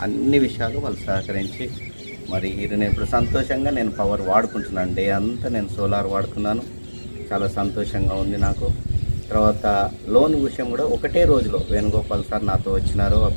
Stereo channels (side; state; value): both; inverted; correlation -1.00